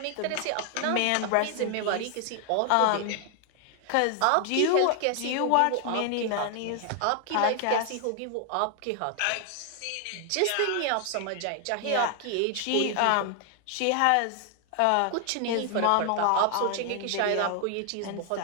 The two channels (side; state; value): both; different; correlation 0.00